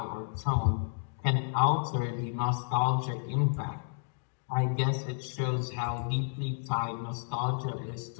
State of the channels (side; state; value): right; silent; digital silence